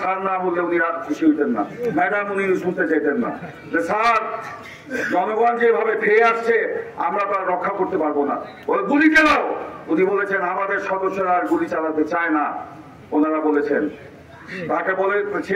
স্যার না বললে উনি আর খুশি হইতেন না, ম্যাডাম উনি শুনতে চাইতেন না, যে স্যার জনগণ যেভাবে খেয়ে আসছে আমরা তো আর রক্ষা করতে পারবো না, ওই গুলি চালাও। উনি বলেছেন আমাদের সদস্যরা আর গুলি চালাতে চায় না। ওনারা বলেছেন, তাকে বলে,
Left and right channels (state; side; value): identical; both; correlation 1.00